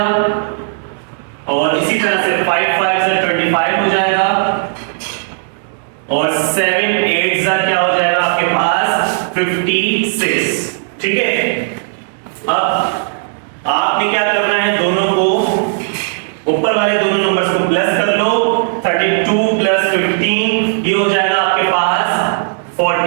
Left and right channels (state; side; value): silent; left; digital silence